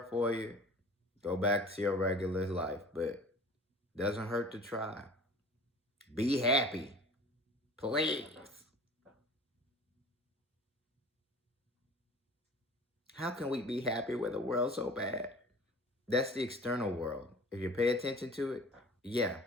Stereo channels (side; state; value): both; normal; correlation 0.44